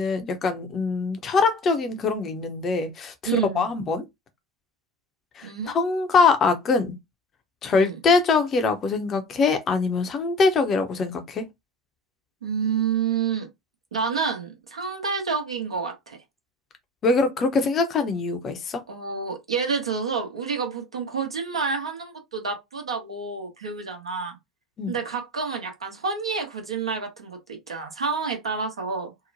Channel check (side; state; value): both; normal; correlation 0.36